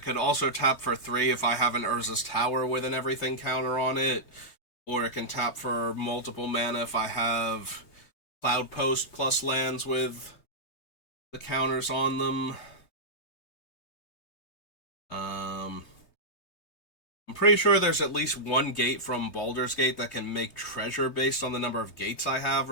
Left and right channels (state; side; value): late; right; 3.2 ms